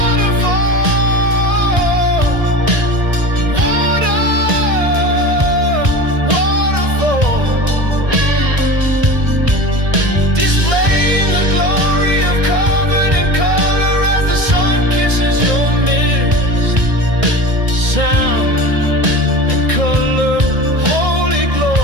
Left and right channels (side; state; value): left; late; 1.5 ms